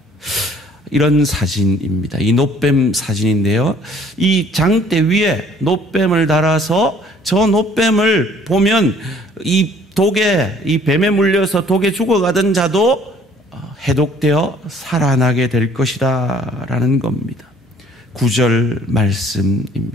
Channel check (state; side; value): normal; both; correlation 0.58